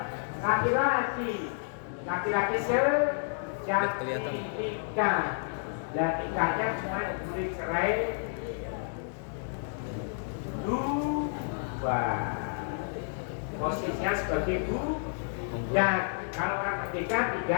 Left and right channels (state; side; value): silent; right; digital silence